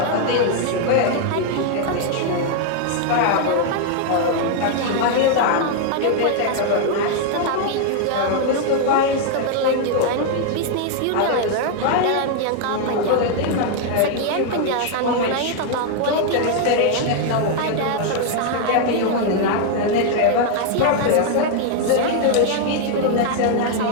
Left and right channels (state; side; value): different; both; correlation 0.00